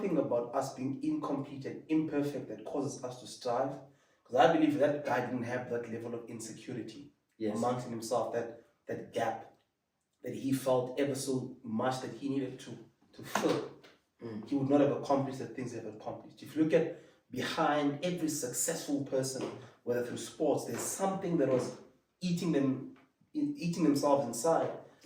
about us being incomplete and imperfect that causes us to strive. Because I believe that guy didn't have that level of insecurity amongst himself, that gap that he felt ever so much that he needed to fill. He would not have accomplished the things he have accomplished. If you look at behind every successful person, whether through sports, there's something that was eating themselves inside.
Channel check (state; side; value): identical; both; correlation 1.00